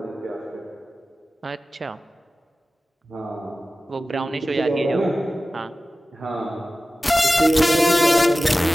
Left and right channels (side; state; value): both; normal; correlation 0.95